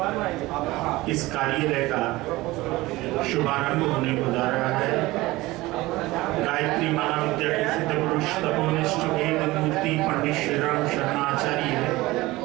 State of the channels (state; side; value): quieter; left; 19.5 dB